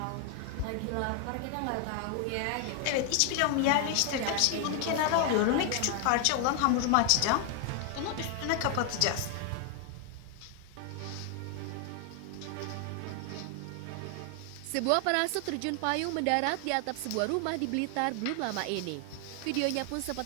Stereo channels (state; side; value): different; both; correlation 0.00